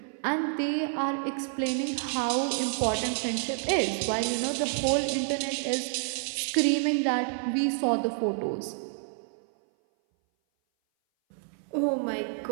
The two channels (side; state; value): left; silent; 57 dB below the other